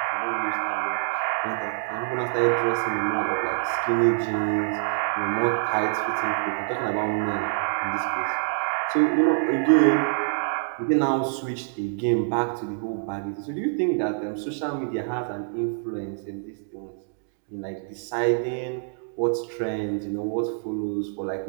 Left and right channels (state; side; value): silent; left; digital silence